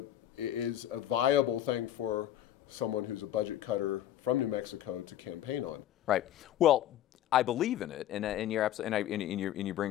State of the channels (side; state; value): right; quieter; 12.1 dB